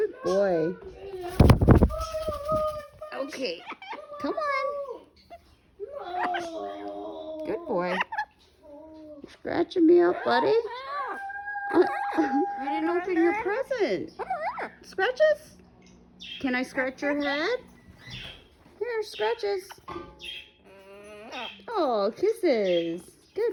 boy. Okay. Come on. Good boy. Scratching me up, buddy. You didn't open your present. Scratches? Can I scratch your head? Here, scratches. Oh, kisses.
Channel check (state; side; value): identical; both; correlation 1.00